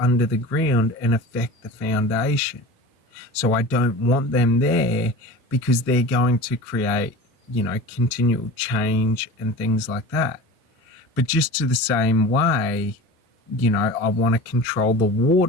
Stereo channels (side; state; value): both; normal; correlation 0.35